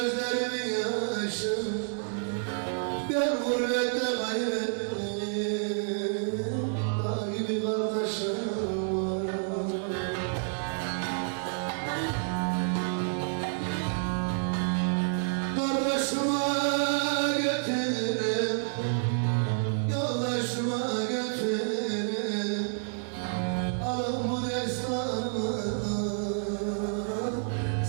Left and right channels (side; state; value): left; silent; 58 dB below the other